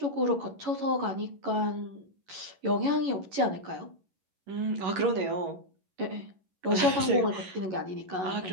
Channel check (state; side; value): late; left; 11 ms